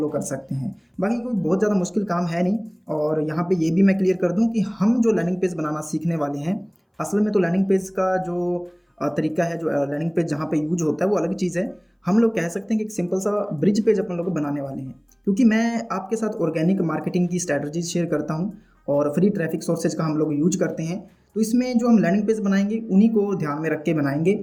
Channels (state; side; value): identical; both; correlation 1.00